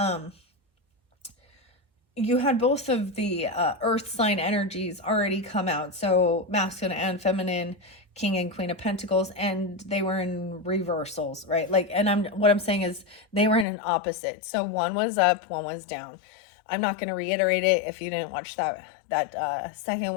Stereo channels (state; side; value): drops out; right; at 13.7 s